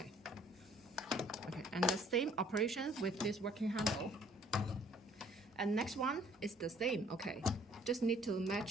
Okay, and the same operation with this working handle. And next one is the same, okay. Just need to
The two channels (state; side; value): normal; both; correlation 0.58